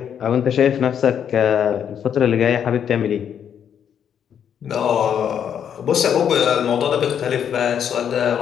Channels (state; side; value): quieter; right; 8.6 dB